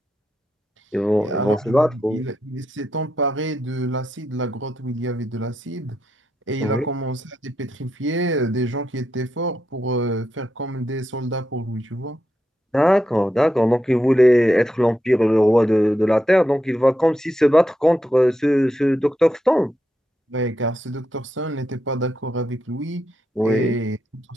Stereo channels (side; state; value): both; normal; correlation 0.84